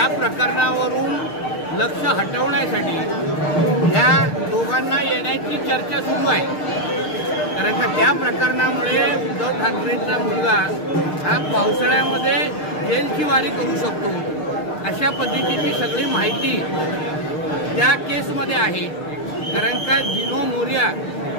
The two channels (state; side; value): late; right; 6.6 ms